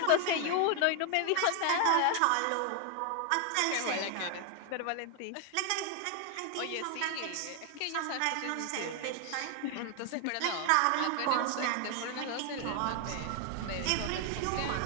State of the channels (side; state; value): both; different; correlation 0.00